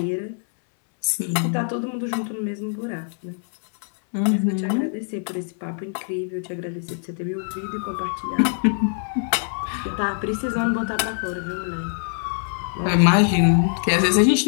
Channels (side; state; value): right; silent; 57 dB below the other